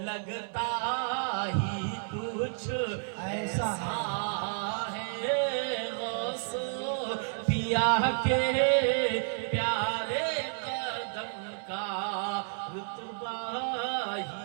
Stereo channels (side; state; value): left; silent; 57 dB below the other